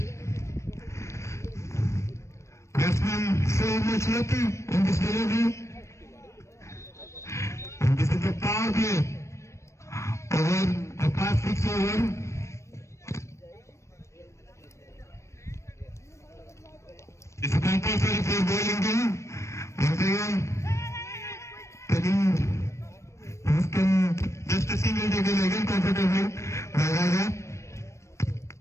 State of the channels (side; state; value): right; late; 0.14 ms